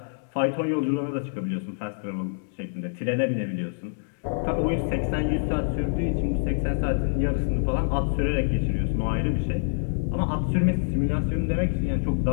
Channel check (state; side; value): silent; right; digital silence